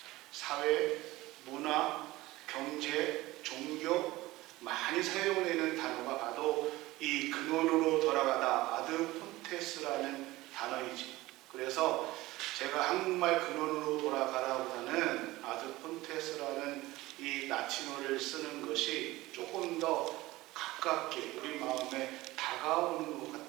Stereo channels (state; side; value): quieter; left; 18.7 dB